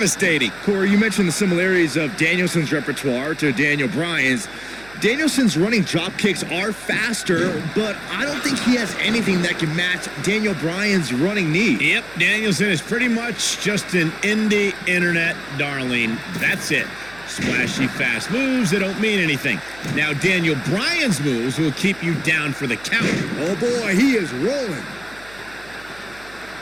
Corey, you mentioned the similarities of Danielson's repertoire to Daniel Bryan's. Danielson's running drop kicks are faster, but I don't think he has anything that can match Daniel Bryan's running knee. Yep, Danielson is pretty much just an indie internet darling. That's it. Splashy fast moves that don't mean anything. Now Daniel Bryan's moves will keep you down for the count. Oh boy, he is rolling.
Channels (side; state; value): right; noise; hum, 23 dB below the sound